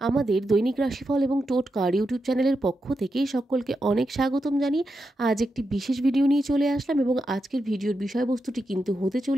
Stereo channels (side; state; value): both; normal; correlation 0.87